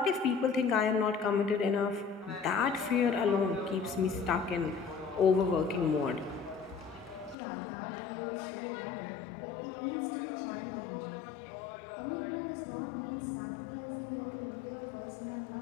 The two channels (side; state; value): right; drops out; at 7.4 s